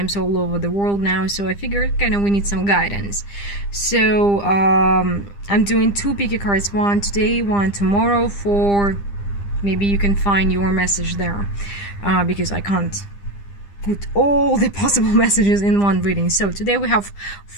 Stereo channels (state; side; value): late; right; 10 ms